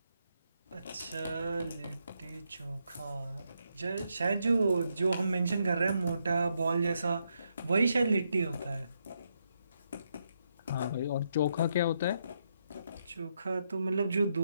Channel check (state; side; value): inverted; both; correlation -0.80